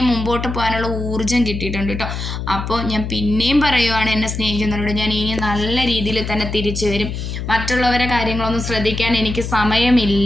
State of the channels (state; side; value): noise; left; hum, 5 dB below the sound